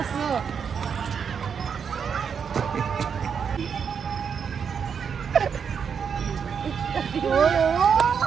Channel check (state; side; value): quieter; left; 6.8 dB